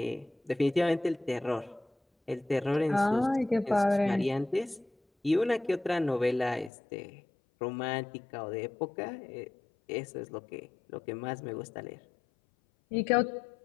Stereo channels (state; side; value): drops out; right; at 6.7 s